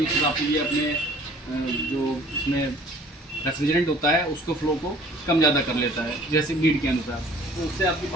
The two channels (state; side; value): normal; both; correlation 0.52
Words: उस हिसाब से ये अपने जो इसमें रेफ्रिजरेंट होता है उसको फ्लो को कम ज़्यादा कर लेता है जैसे नीड के अनुसार, तो उससे आपकी